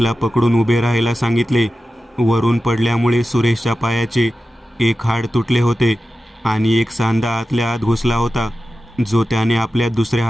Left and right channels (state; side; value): normal; both; correlation 0.93